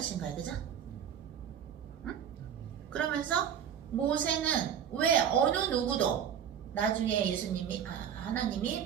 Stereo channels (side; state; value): left; quieter; 8.6 dB